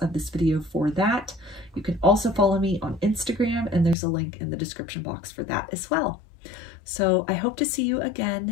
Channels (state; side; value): drops out; right; at 4.0 s